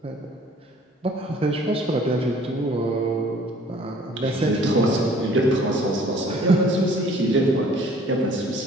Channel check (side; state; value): both; normal; correlation 0.54